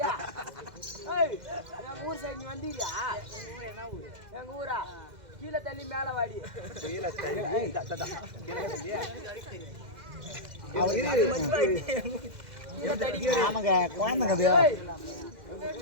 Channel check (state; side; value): late; left; 2.0 ms